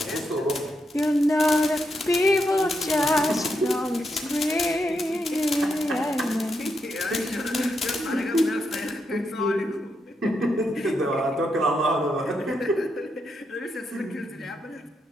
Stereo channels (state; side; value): normal; both; correlation 0.82